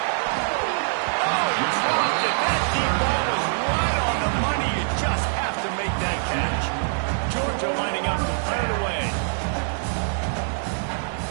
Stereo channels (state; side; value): silent; left; digital silence